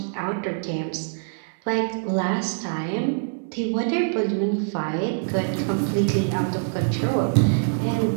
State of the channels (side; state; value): left; silent; digital silence